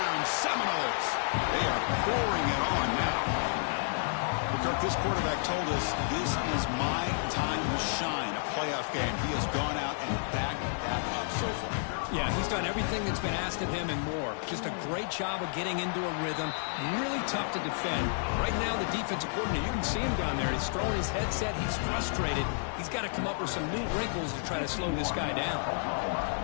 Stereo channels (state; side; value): silent; right; digital silence